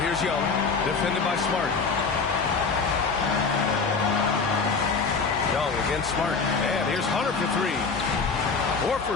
here's Young, defended by Smart. Young against Smart. And here's Hunter for 3.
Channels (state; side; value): quieter; right; 4.8 dB